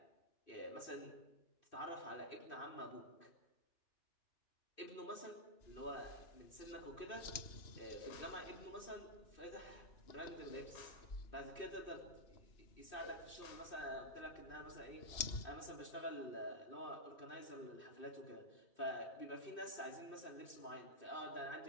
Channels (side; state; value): right; late; 2.6 ms